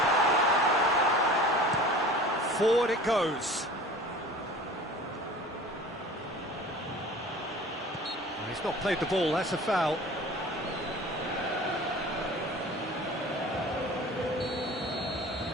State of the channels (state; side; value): normal; both; correlation 0.42